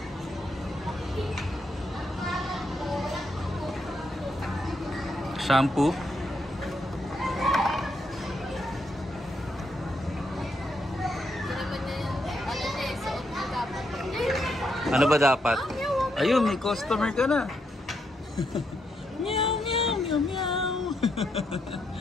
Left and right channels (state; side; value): normal; both; correlation 0.79